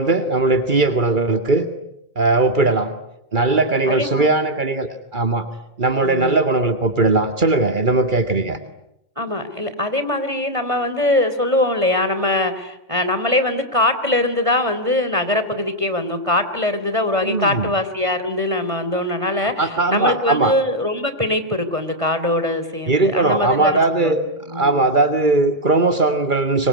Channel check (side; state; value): left; late; 1.5 ms